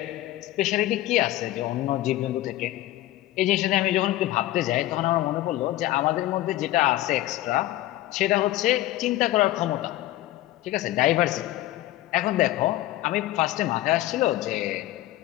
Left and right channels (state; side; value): quieter; right; 15.7 dB